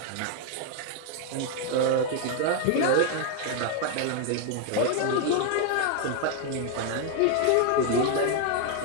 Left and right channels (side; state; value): both; different; correlation 0.00